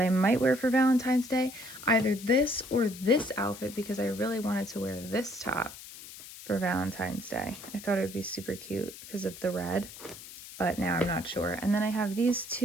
I might wear for Valentine's Day. Either this or this outfit, because I really wanted to wear this top for Valentine's Day. I thought it would be super cute because of the red, but now I'm not sure. And then I have these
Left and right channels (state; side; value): noise; left; hiss, 15 dB below the sound